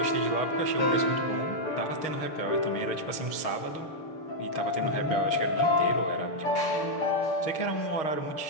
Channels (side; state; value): right; late; 6.4 ms